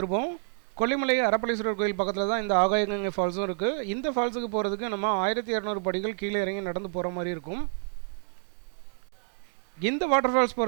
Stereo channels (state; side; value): silent; left; digital silence